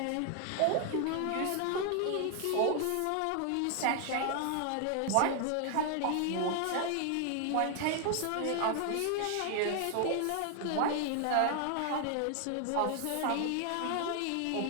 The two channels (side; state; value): both; different; correlation 0.00